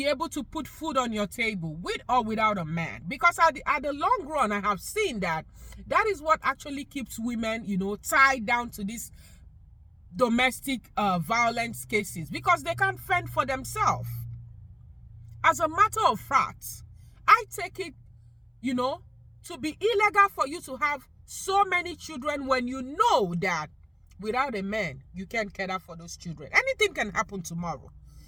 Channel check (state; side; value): identical; both; correlation 1.00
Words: able to put food on your table, with or without a man. Because at the long run, I have seen that is what actually keeps women tied down to these domestic violence cases, because they can't fend for themselves. As a matter of fact, I take it to be illegal for you to have so many children when you know that without a man, you can't care for those children. Anything can happen tomorrow.